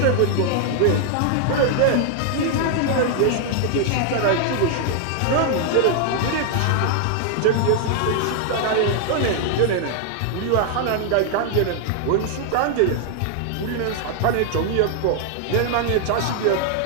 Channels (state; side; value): different; both; correlation 0.00